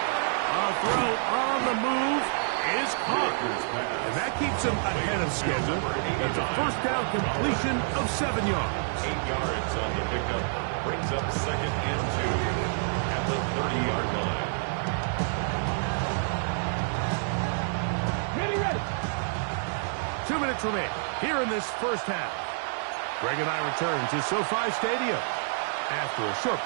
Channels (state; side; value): silent; left; 59 dB below the other